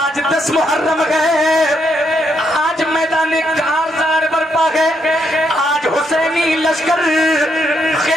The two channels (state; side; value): normal; both; correlation 0.77